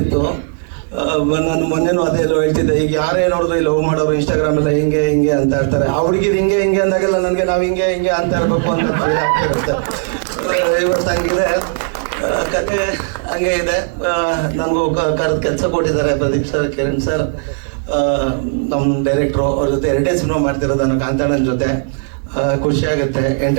ನಾನು ಮೊನ್ನೆನೂ ಅದೇ ಎಲ್ಲೋ ಹೇಳ್ತಿದ್ದೆ, ಈಗ ಯಾರೇ ನೋಡಿದ್ರು ಲವ್ ಮಾಡೋರು ಇನ್ಸ್ಟಾಗ್ರಾಮ್ ಎಲ್ಲ ಹಿಂಗೆ ಹಿಂಗೆ ಅಂತ ಇರ್ತಾರೆ. ಆ ಹುಡುಗಿರು ಹಿಂಗೆ ಹಿಂಗೆ ಅಂದಾಗೆಲ್ಲ ನನಗೆ ನಾವು ಹಿಂಗೆ ಹಿಂಗೆ ಅಂತ ಇರಬೇಕು ಅಂತ ಫೀಲ್ ಆಗ್ತಿರುತ್ತೆ. ಇವತ್ತು ಹಂಗಿದೆ ಕತೆ, ಹಂಗೆ ಇದೆ. ನನಗೂ ಕರೆದು ಕೆಲಸ ಕೊಟ್ಟಿದ್ದಾರೆ ಪ್ರದೀಪ್ ಸರ್, ಕಿರಣ್ ಸರ್, ನಮ್ಮ ಡೈರೆಕ್ಟ್ರು. ಅವ್ರ ಜೊತೆ 2 ಸಿನಿಮಾ ಮಾಡ್ತಿರೋದು ನಾನು ಕಾಂತಾಣನ ಜೊತೆ. ಖುಷಿ ಆಗುತ್ತೆ.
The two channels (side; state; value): left; silent; 61 dB below the other